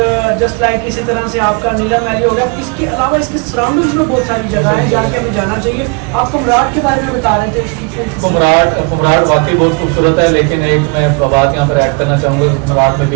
جسٹ لائک اسی طرح سے آپ کا نیلم ویلی ہو گیا. اس کے علاوہ اس کے سراؤنڈنگس میں بہت ساری جگہیں ہیں جہاں کے ہمیں جانا چاہیے. آپ کمراٹ کے بارے میں بتا رہے تھے. کمراٹ واقعی بہت خوبصورت ہے, لیکن ایک میں بات یہاں پر ایڈ کرنا چاہوں گا کہ کمراٹ میں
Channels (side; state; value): left; quieter; 32.9 dB